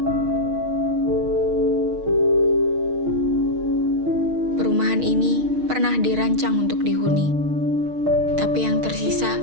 Perumahan ini pernah dirancang untuk dihuni, tapi yang tersisa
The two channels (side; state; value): left; late; 6.4 ms